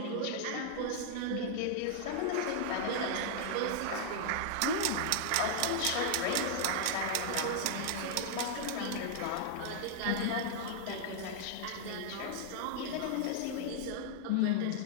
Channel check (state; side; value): different; both; correlation -0.01